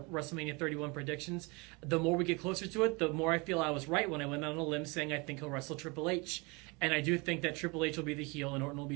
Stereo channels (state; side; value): quieter; left; 28.1 dB